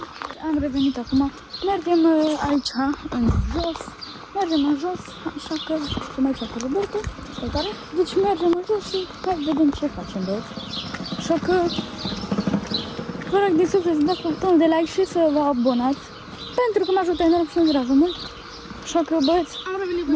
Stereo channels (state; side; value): identical; both; correlation 1.00